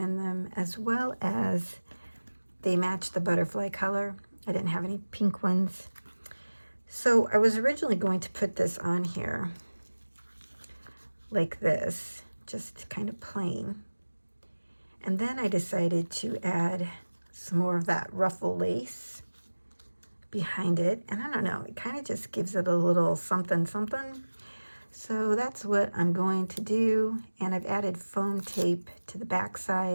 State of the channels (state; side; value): inverted; both; correlation -1.00